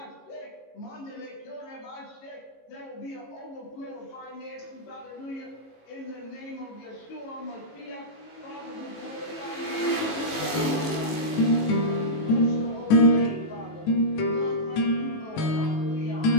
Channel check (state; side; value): late; right; 18 ms